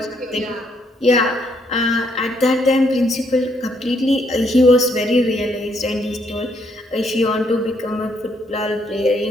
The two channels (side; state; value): both; normal; correlation 0.72